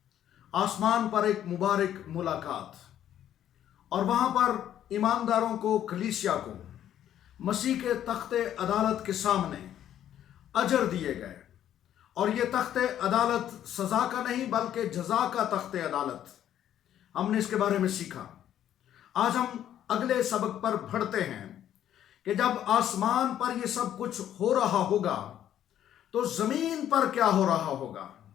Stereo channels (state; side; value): quieter; right; 11.0 dB